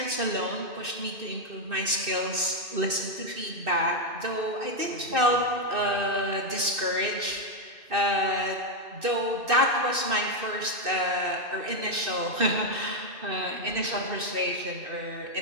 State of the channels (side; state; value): left; late; 2.6 ms